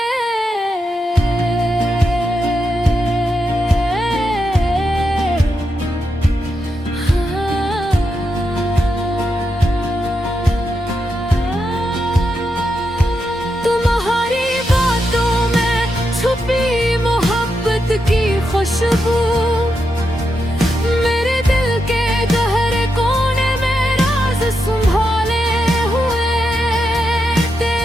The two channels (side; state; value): both; normal; correlation 0.85